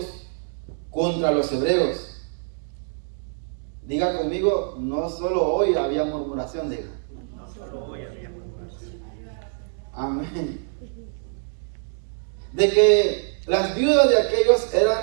contra los hebreos. Diga conmigo, no solo hoy había murmuración, diga. No solo hoy había murmuración. Amén. De que las viudas de aquellos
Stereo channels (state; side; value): silent; left; 62 dB below the other